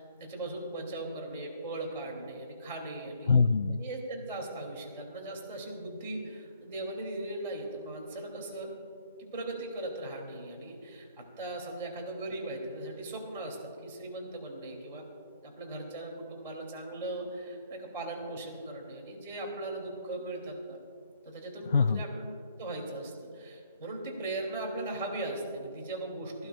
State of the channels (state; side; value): inverted; both; correlation -0.63